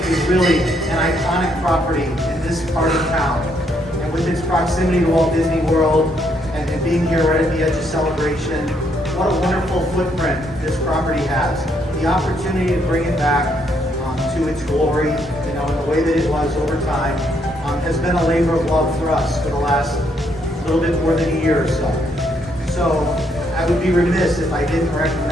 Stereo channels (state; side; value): normal; both; correlation 0.73